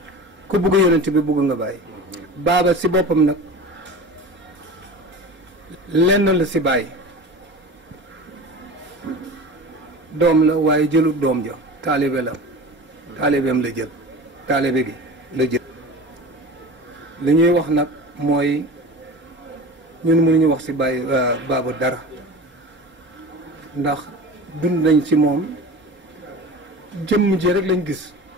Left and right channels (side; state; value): left; late; 4.3 ms